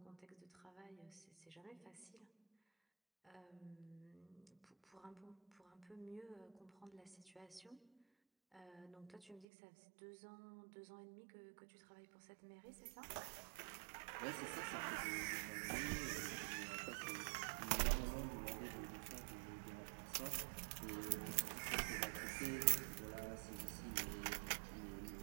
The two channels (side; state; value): left; drops out; at 9.5 s